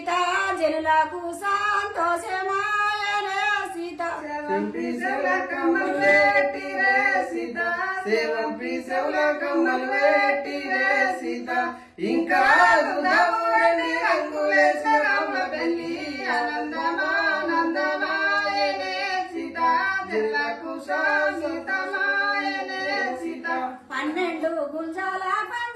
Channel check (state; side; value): identical; both; correlation 1.00